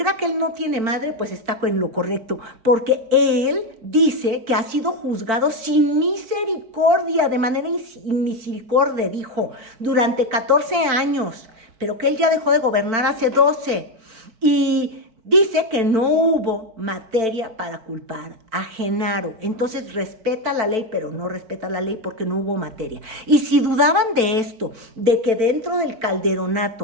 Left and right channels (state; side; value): late; left; 4.5 ms